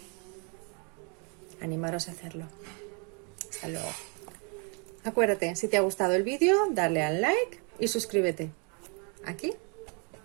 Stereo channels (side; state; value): left; quieter; 35.6 dB